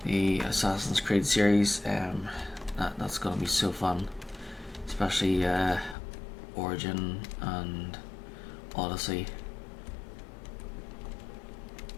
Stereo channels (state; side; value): drops out; right; at 6.0 s